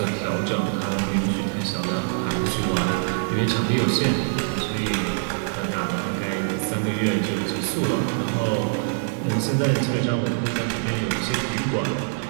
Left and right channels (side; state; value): left; silent; 63 dB below the other